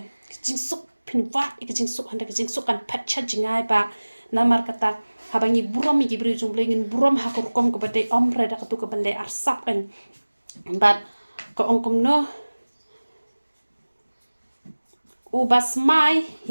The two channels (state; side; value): inverted; both; correlation -1.00